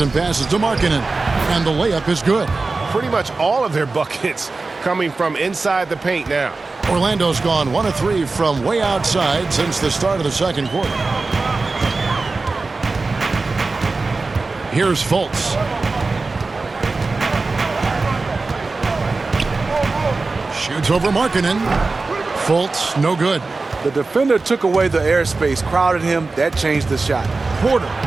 passes to Markkanen, and the layup is good. Pretty much all of their buckets coming from inside the paint now. Orlando's gone 1 of 3 from way outside since the start of the second quarter. Here's Fultz. Shoots over Markkanen. Fultz, no good. The defender took away the airspace, crowded him. That changed the shot. Porter.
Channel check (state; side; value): quieter; left; 3.7 dB